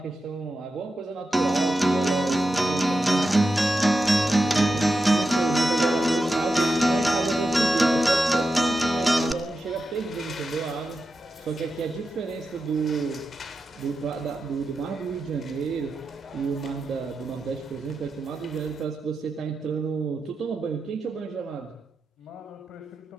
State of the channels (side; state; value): both; normal; correlation 0.89